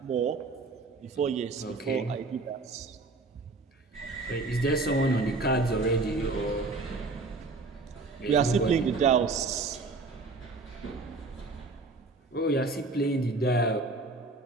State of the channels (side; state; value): left; quieter; 3.5 dB